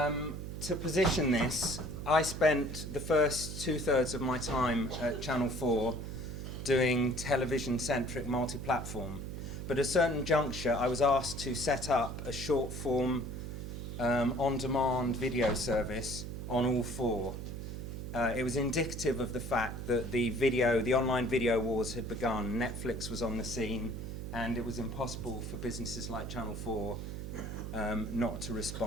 to position this, I spent the first 2/3 of my time at Channel 4 doing television-centric multi-platform. But at a certain juncture, I was asked to set up a short-form on-demand video service on all 4. It was indicative of the fact that the online video wars had begun. Netflix was on the scene, and it was impossible for businesses like Channel 4 not to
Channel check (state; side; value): noise; right; hum, 6 dB below the sound